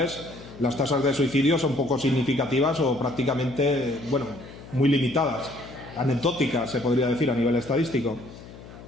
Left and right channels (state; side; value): noise; left; hum, 17 dB below the sound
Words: las tasas de suicidio son poco significativas o prácticamente, bueno, muy limitadas, anecdóticas, se podría decir, a nivel estadístico.